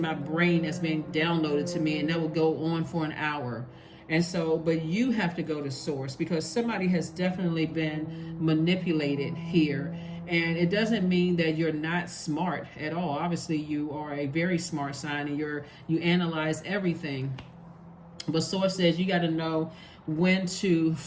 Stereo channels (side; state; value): both; identical; correlation 1.00